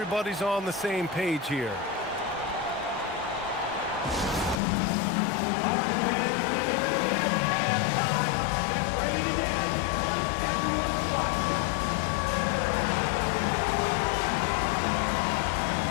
on the same page here.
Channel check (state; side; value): drops out; right; at 4.6 s